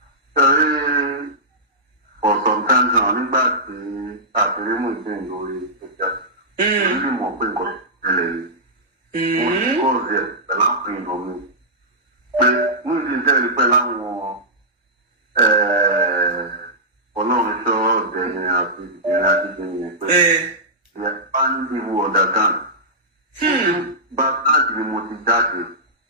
For some time now, nígbà tí àtìrímù ìdí lórí ìjà, ó lè mọ̀ pé nǹkan ṣẹlẹ̀ yìí. Mo ti kọ́ ọ̀sẹ̀ pẹ̀lú àwọn èèyàn mi. Pé mú ìdí ìjẹ́rìí pẹ̀lú àwọn Ọlọ́run ṣọ́ ọ̀dẹ̀ yẹn àti ìdílé àti ìdílé yẹn pé ìyá bá ń dìbò ọ̀dà kan. Bá táàdì ni mo ti jáde.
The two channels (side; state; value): both; normal; correlation -0.13